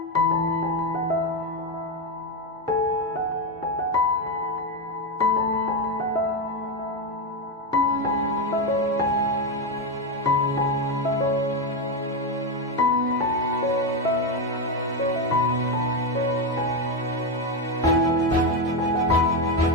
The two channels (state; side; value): normal; both; correlation 0.10